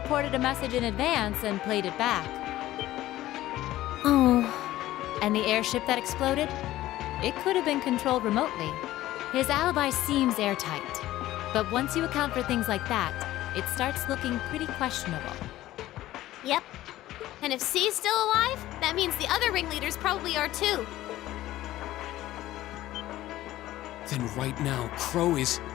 a message in advance and played it back. Oh. And the airship that exploded? It could have been controlled remotely. His alibi seems airtight. But once you account for things like that, it starts looking pretty questionable. Yep. And if C's still alive, that means the other ringleaders probably are too. Then right now, Crow is...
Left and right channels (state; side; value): quieter; right; 15.2 dB